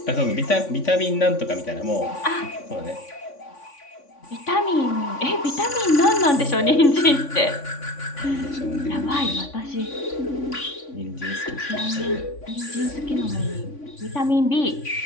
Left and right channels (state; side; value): late; right; 3.5 ms